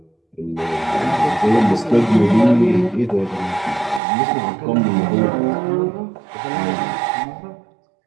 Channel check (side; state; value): left; drops out; at 4.0 s